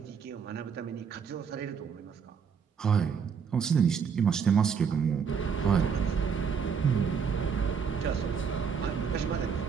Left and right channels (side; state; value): left; quieter; 6.5 dB